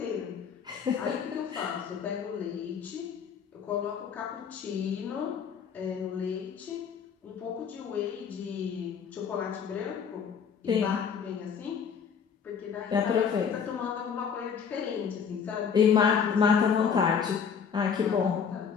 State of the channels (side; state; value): right; quieter; 6.9 dB